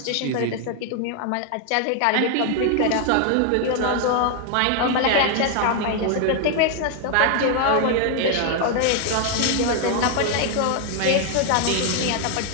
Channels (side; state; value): both; different; correlation 0.00